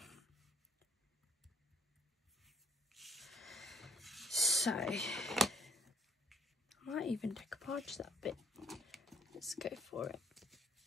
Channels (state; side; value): normal; both; correlation 0.64